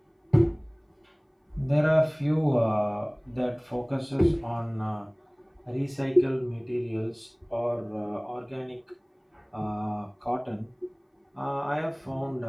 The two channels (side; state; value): both; identical; correlation 1.00